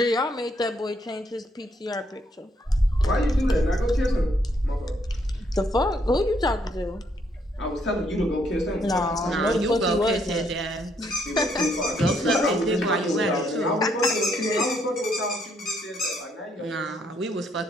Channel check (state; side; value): normal; both; correlation 0.72